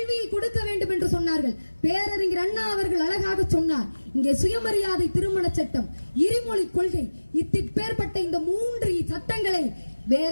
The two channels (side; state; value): both; inverted; correlation -1.00